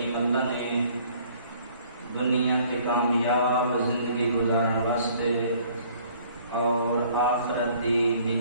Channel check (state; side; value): inverted; both; correlation -0.58